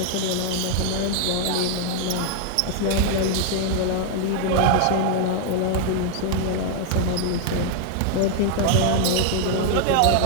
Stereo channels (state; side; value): different; both; correlation 0.00